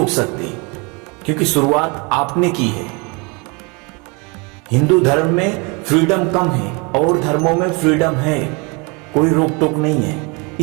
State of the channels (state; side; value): quieter; left; 30.1 dB